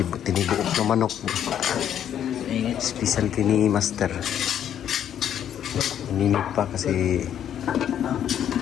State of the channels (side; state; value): right; quieter; 9.9 dB